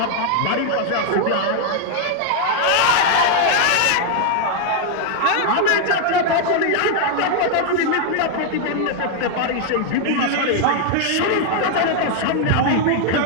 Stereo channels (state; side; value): different; both; correlation 0.00